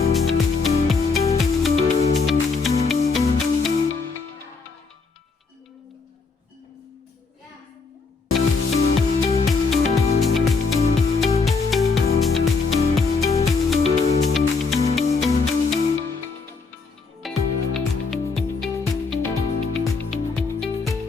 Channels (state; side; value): quieter; right; 4.5 dB